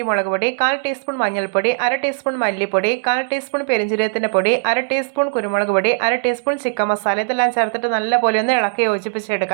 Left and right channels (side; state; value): left; silent; digital silence